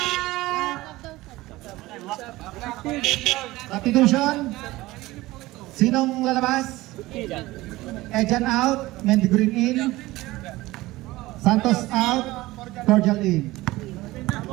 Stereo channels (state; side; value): quieter; left; 18.7 dB